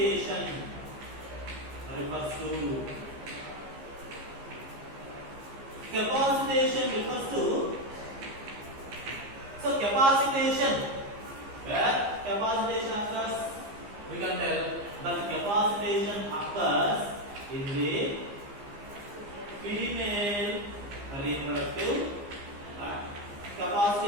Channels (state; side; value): late; left; 15 ms